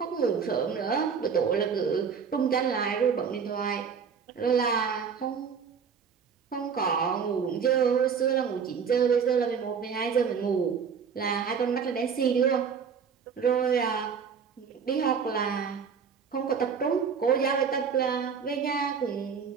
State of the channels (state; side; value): quieter; left; 6.5 dB